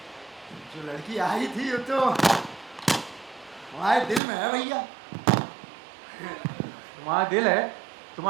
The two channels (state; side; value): drops out; left; at 4.2 s